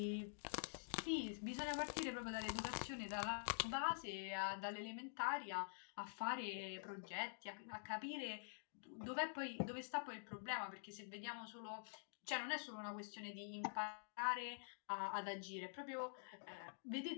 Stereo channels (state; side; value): silent; right; digital silence